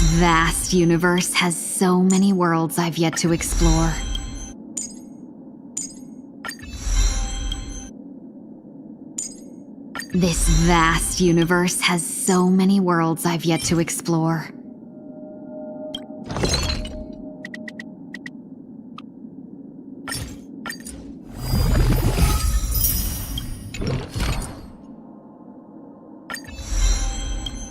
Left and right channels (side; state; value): both; identical; correlation 1.00